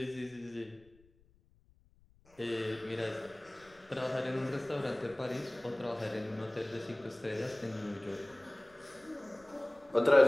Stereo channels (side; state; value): left; noise; rumble, 29 dB below the sound